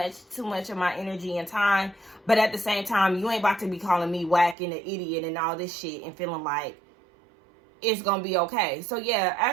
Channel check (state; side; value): drops out; left; at 4.5 s